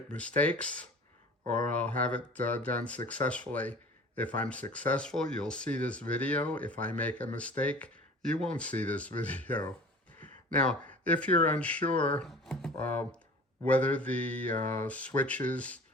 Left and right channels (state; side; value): normal; both; correlation 0.43